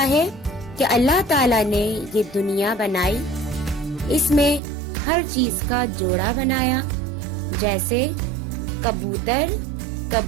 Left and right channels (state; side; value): drops out; left; at 4.6 s